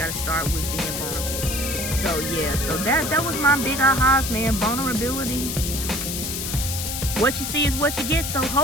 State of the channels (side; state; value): left; noise; hiss, 4 dB below the sound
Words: to start with being vulnerable. So yeah, so that was my big ahas, man. Vulnerability. What you see is what you get. So